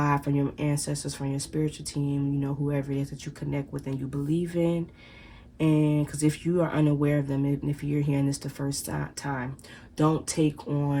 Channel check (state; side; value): identical; both; correlation 1.00